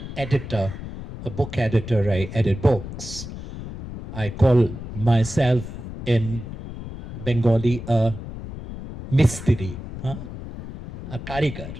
editor, a book editor, I edit books. I call myself in Bengali a mistri, a karigar,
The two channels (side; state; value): left; noise; rumble, 10 dB below the sound